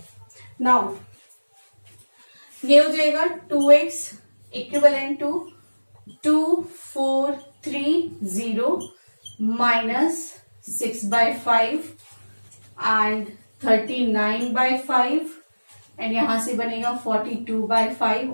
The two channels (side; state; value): both; inverted; correlation -1.00